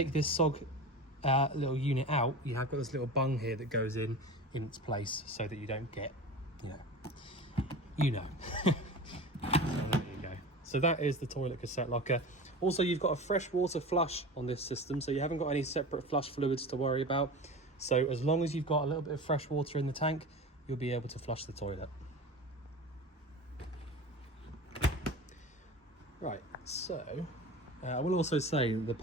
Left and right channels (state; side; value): normal; both; correlation 0.32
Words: this SOG little unit out, you have got this little bung here that goes in its place so that you don't get, you know. So there you go. So that is the toilet cassette locker. Also, you've got a fresh water flush on this system, so you haven't got any separate flush fluids to worry about. So as long as you've got a little bit of fresh water in the tank, you'll be able to flush the toilet. Right, so I will also say the